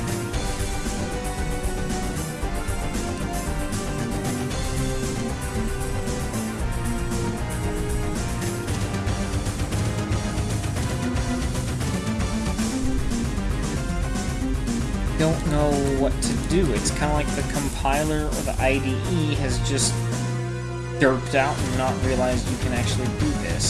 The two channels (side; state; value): both; identical; correlation 1.00